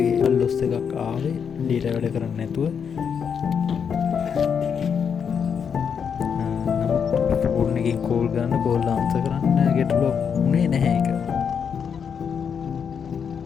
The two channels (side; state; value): right; quieter; 7.0 dB